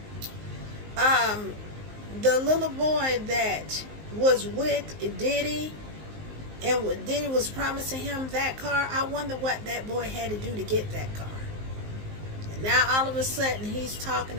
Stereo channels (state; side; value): late; left; 19 ms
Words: The little boy that was with Diddy and Diddy was promising him that car, I wonder what that boy had to do to get that car. And now all of a sudden he's talking